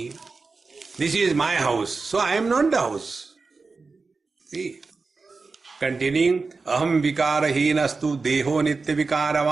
This is my house, so I am not the house. See? Continuing, aham vikarahinastu deho nitya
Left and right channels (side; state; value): left; quieter; 4.2 dB